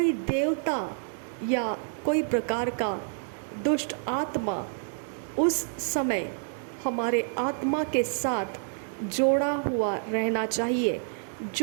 देवता या कोई प्रकार का दुष्ट आत्मा उस समय हमारे आत्मा के साथ जोड़ा हुआ रहना चाहिए,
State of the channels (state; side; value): silent; left; digital silence